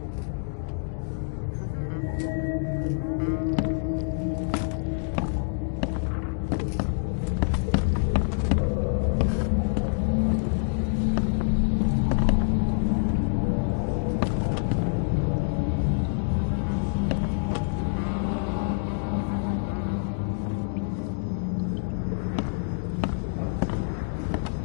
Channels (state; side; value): silent; right; digital silence